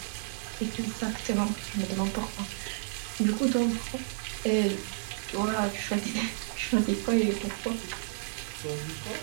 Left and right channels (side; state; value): left; silent; 57 dB below the other